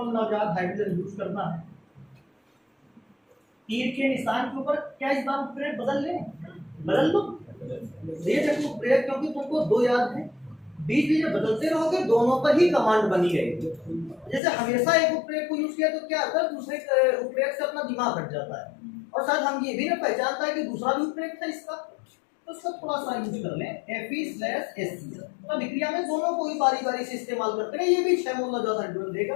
नवजात हाइड्रोजन यूज करना है। तीर के निशान के ऊपर क्या इस बार उत्प्रेरक बदल लो, ये देखो उत्प्रेरक, क्योंकि तुमको 2 याद है, बीच बीच में बदलते रहोगे, दोनों पर ही कमांड बनी रहेगी। जैसे हमेशा एक उत्प्रेरक को यूज किया तो क्या होता है, दूसरे उत्प्रेरक से अपना दिमाग हट जाता है, और साथ हम ये भी ना पहचानता है कि दूसरा भी उत्प्रेरक था इसका, तो उसका थोड़ा सा यूज कर लें, Fe/HCl। तो विक्रिया में दोनों को ही बारी बारी से इस्तेमाल करते हैं। ये भी 6 मोल नवजात हाइड्रोजन देगा,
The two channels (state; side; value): drops out; right; at 14.4 s